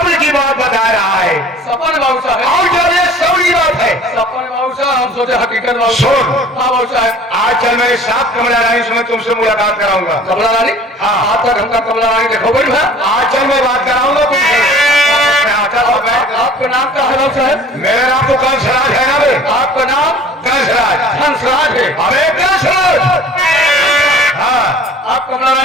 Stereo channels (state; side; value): normal; both; correlation 0.48